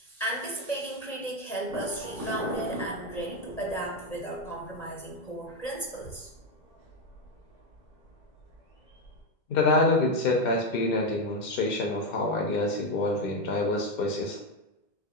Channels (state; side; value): late; right; 1.8 ms